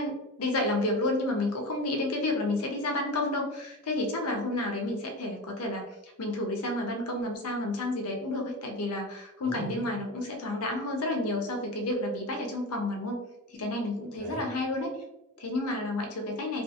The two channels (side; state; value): both; normal; correlation 0.27